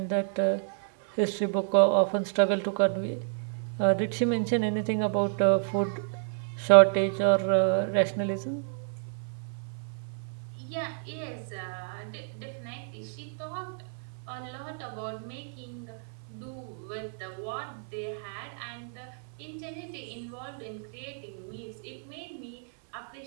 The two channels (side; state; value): left; silent; 56 dB below the other